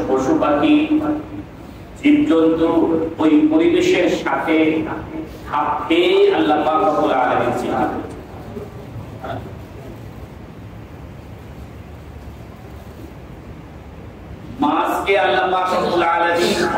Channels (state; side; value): identical; both; correlation 1.00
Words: পশু পাখি, জীবজন্তু ওই পরিবেশের সাথে খাপ খেয়ে আল্লাহ পাক রব্বুল আলামিন সৃষ্টি করেছেন। মাছকে আল্লাহ পাক রব্বুল আলামিন